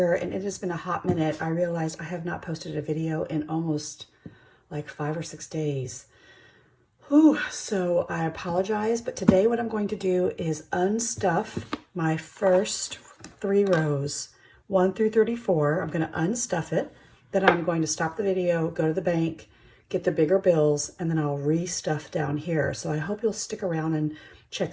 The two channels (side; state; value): both; identical; correlation 1.00